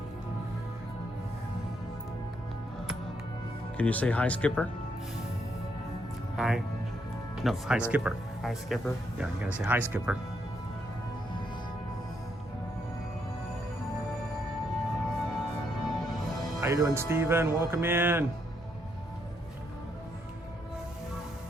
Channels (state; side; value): normal; both; correlation 0.76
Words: Can you say hi, Skipper? Hi. No, hi, Skipper. Hi, Skipper. Yeah, you gotta say hi, Skipper. How you doing, Steven? Welcome in.